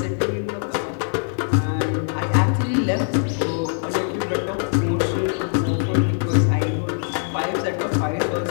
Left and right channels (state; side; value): silent; right; digital silence